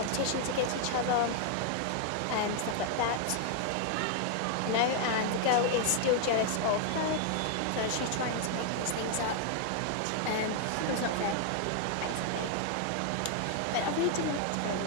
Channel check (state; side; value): different; both; correlation 0.00